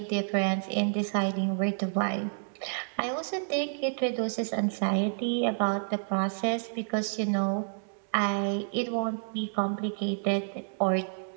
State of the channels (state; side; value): silent; left; digital silence